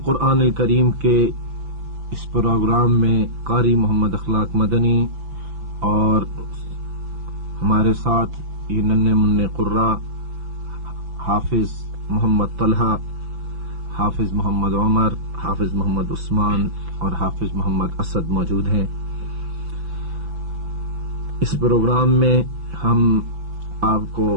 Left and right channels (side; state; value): left; late; 5.9 ms